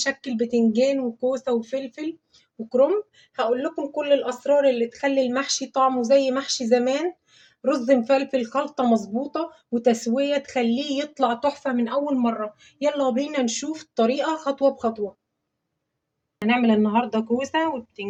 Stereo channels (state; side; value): identical; both; correlation 1.00